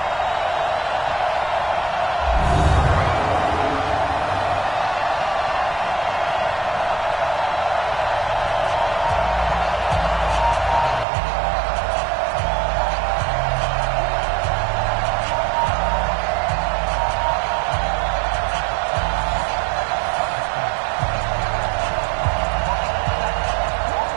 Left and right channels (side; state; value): left; drops out; at 11.1 s